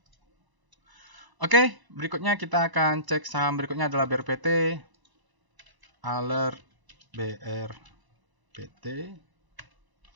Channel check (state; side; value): late; left; 1.0 ms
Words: Oke, berikutnya kita akan cek saham berikutnya adalah BRPT. Alert BRPT.